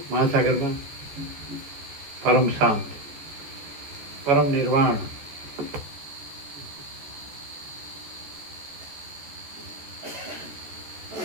મહાસાગરમાં પરમ શાંત, પરમ નિર્વાણ.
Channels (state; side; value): late; left; 14 ms